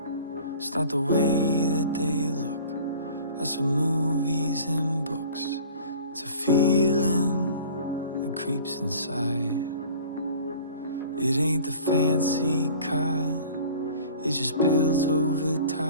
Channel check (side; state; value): both; inverted; correlation -0.46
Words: It's not the way that they look. That's from movies and books. It's a feeling that creeps inside. It ain't the fancy kind. It just builds over